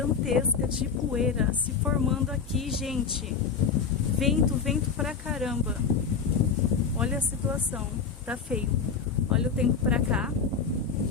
de poeira se formando aqui, gente. Vento, vento pra caramba. Olha a situação, tá feio. Olha o tempo pra cá,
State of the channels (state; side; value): quieter; right; 5.9 dB